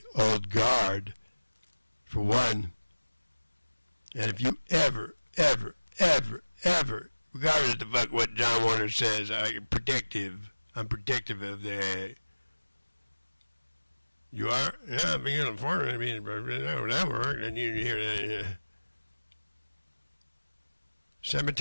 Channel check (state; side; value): inverted; both; correlation -1.00